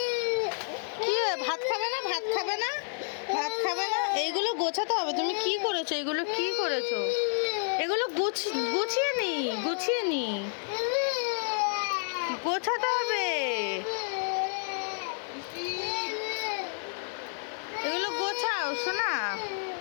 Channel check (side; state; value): right; silent; 58 dB below the other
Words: কি ভাত খাবে না? ভাত খাবে না? ভাত খাবে না? এইগুলো গোছাতে হবে। তুমি কি করেছো? এগুলো কি করেছো? এগুলো গুছিয়ে নি, গুছিয়ে নি, গোছাতে হবে। এগুলো গোছাও শোনা।